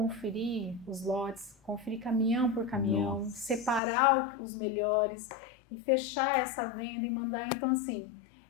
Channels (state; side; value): drops out; right; at 3.8 s